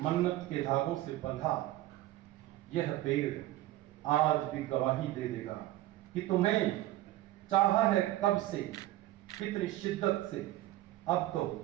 मन्नत के धागों से बंधा यह पेड़ आज भी गवाही दे देगा कि तुम्हें चाहा है कब से, कितनी शिद्दत से, अब तो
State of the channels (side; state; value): left; quieter; 15.6 dB